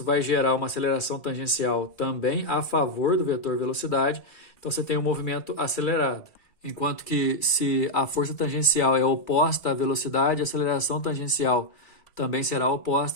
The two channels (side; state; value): right; late; 2.3 ms